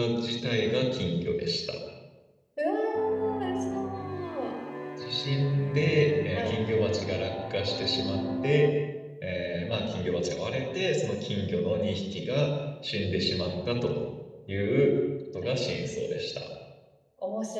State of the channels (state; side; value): identical; both; correlation 1.00